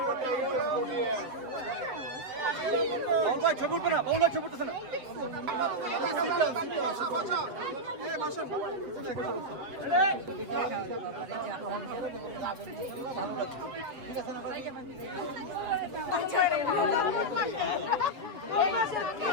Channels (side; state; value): left; late; 7.4 ms